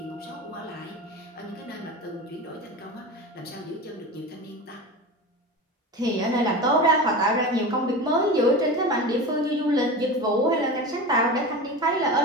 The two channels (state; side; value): normal; both; correlation 0.29